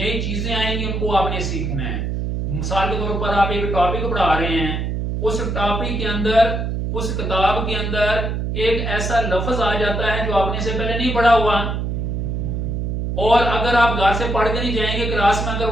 चीजें आएंगी उनको आपने सीखना है। मिसाल के तौर पर आप एक टॉपिक पढ़ा रहे हैं, उस टॉपिक के अंदर उस किताब के अंदर एक ऐसा लफ्ज आ जाता है जो आपने से पहले नहीं पढ़ा हुआ, और अगर आप घर से पढ़ के नहीं जाएंगे क्लास में अगर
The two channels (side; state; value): right; noise; hum, 2 dB below the sound